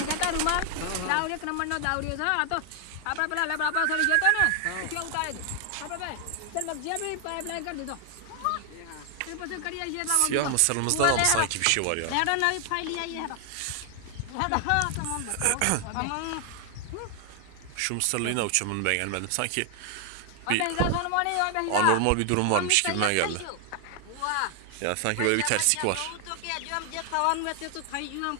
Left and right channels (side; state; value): both; different; correlation 0.00